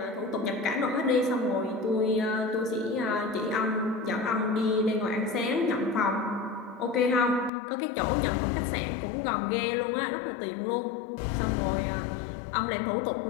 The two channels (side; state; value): right; drops out; at 7.5 s